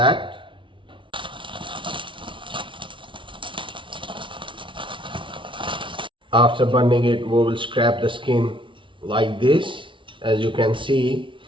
After burning it, we will scrape the skin like this. As you can see,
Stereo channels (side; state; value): left; late; 0.25 ms